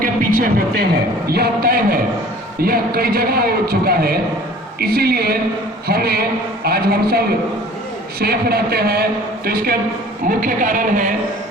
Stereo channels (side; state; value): both; normal; correlation 0.48